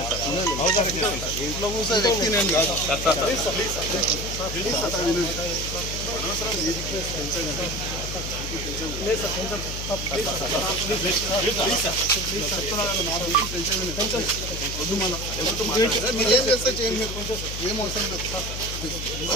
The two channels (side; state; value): left; noise; hum, 6 dB below the sound